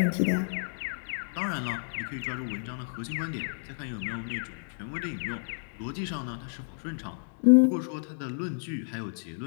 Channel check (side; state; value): right; silent; digital silence